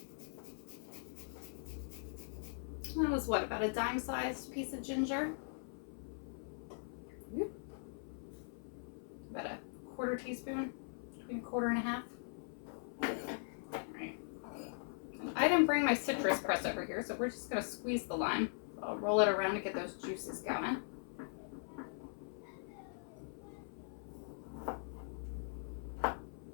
That was what, about a dime-sized piece of ginger? About a 1/4 teaspoon, between 1/4 and 1/2. Right. I didn't bring my citrus press over here, so we're just going to squeeze the lime. So I'll roll it around to get those juices going.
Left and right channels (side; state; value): right; silent; 51 dB below the other